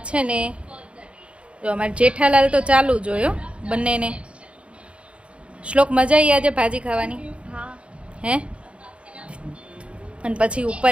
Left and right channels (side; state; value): left; late; 0.060 ms